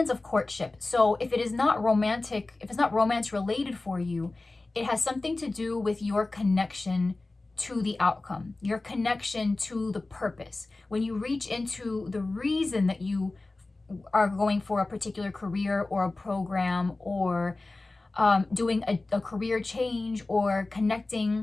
of courtship. So if it is not romantic, if it's not romance related for you, it has something to do with your connection to the outcome, your connection to the purpose. When you reach into the reason that you are going for a particular career or a program, or doing a career change, or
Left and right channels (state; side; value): quieter; right; 3.2 dB